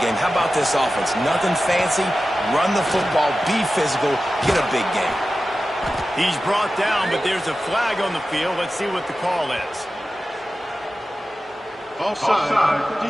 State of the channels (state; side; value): normal; both; correlation 0.94